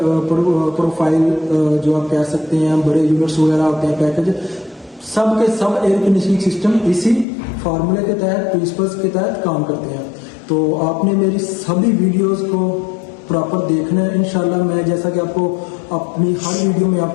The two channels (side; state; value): right; drops out; at 7.2 s